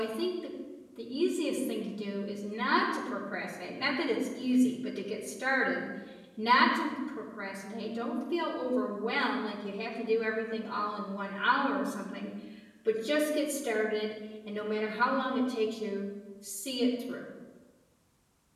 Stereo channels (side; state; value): both; identical; correlation 1.00